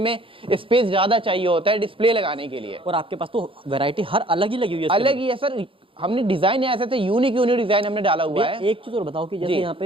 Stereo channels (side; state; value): left; late; 0.26 ms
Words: स्पेस ज्यादा चाहिए होता है डिस्प्ले लगाने के लिए। और आपके पास तो वैरायटी हर अलग ही लगी हुई है। अलग ही है सर, हमने डिजाइन ऐसे थे, यूनिक डिजाइन हमने डाला हुआ है। एक चीज और बताओ कि जैसे यहाँ